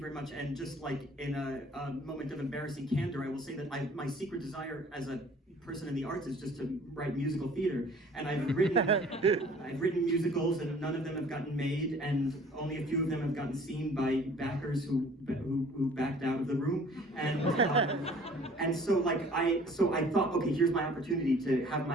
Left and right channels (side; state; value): both; normal; correlation 0.52